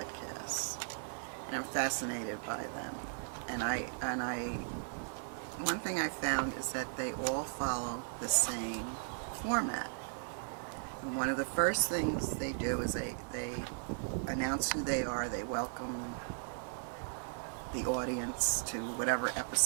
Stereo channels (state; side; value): silent; left; digital silence